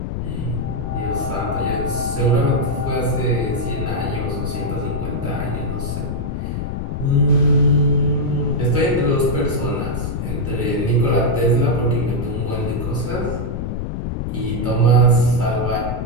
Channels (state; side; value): noise; left; rumble, 3 dB below the sound